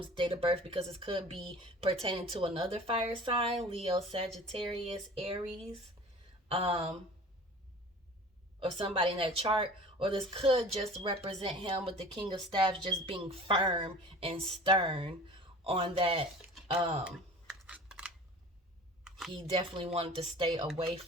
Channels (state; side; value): normal; both; correlation 0.42